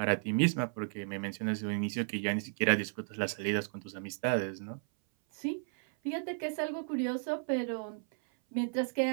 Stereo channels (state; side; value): silent; left; 55 dB below the other